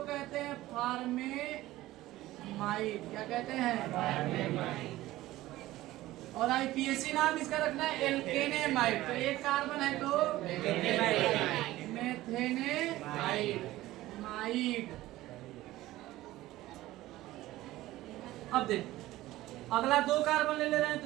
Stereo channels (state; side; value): quieter; left; 16.5 dB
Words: कहते हैं फॉर्मेमाइड। क्या कहते हैं, फॉर्मेमाइड। और IPAC नाम इसका रखना है एल्केनेमाइड। तो एक कार्बन है तो मेथेनेमाइड। अब देख, अगला 2 कार्बन ले रहे हैं तो